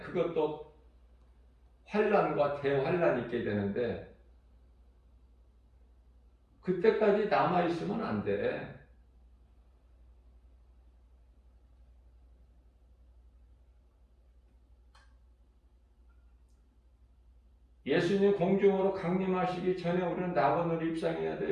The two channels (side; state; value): both; identical; correlation 1.00